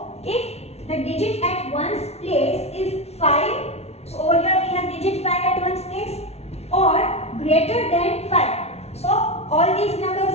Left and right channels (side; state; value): right; late; 0.31 ms